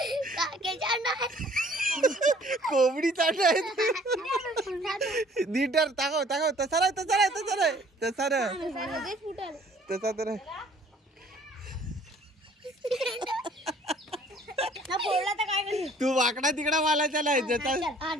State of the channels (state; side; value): normal; both; correlation 0.56